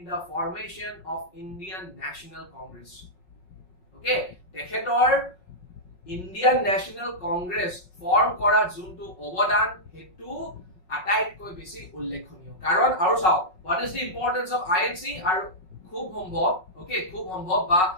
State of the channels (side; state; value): right; late; 5.4 ms